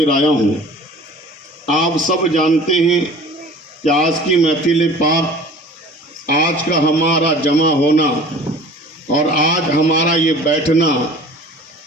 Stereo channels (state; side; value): normal; both; correlation 0.44